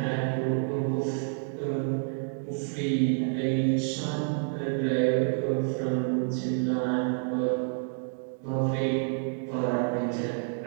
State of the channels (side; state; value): left; silent; digital silence